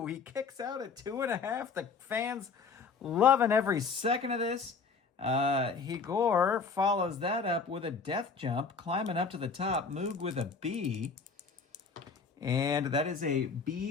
He kicks out at 2.5. The fans loving every second of this. Igor follows that up with a death jump, climbing up to the top. Moog with a B. And that is a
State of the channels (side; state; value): right; quieter; 5.1 dB